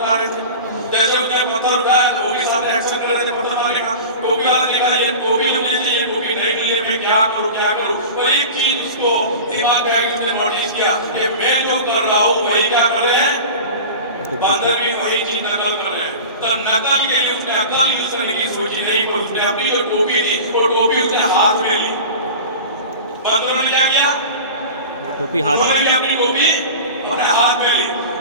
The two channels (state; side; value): inverted; both; correlation -0.33